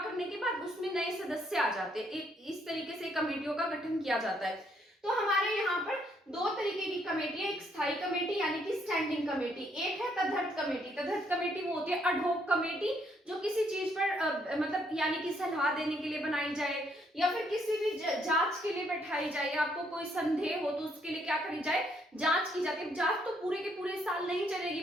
के बाद उसमें नए सदस्य आ जाते हैं। इस तरीके से कमेटियों का गठन किया जाता है। तो हमारे यहाँ पर दो तरीके की कमेटी है, एक स्थायी कमेटी यानी कि स्टैंडिंग कमेटी, एक है तदर्थ कमेटी। तदर्थ कमेटी वो होती है एडहॉक कमेटी, जो किसी चीज पर मतलब यानी कि सलाह देने के लिए बनाई जाए या फिर किसी भी जांच के लिए बैठाई जाए, आपको कोई संदेह हो तो उसके लिए क्या करी जाए, जांच की जाती है। जांच तो पूरे के पूरे साल नहीं चलेगी,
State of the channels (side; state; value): both; normal; correlation 0.71